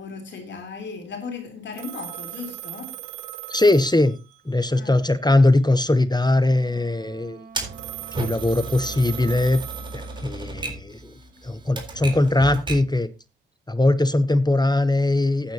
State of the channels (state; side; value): normal; both; correlation 0.88